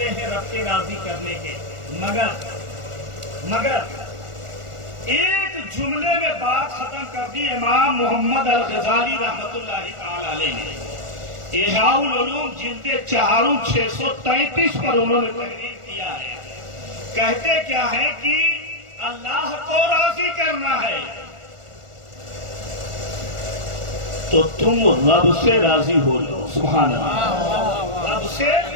ہیں رب کے راضی کرنے کے، مگر ایک جملے میں بات ختم کر دی امام محمد الغزالی رحمۃ اللہ تعالی علیہ نے۔ احیاء العلوم جلد 4 633 پر انہوں نے تحریر کیا ہے۔ کہتے کیا ہے کہ اللہ کو راضی کرنا ہے تو تم رب سے راضی ہو جاؤ، سبحان اللہ، رب سے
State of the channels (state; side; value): late; left; 1.4 ms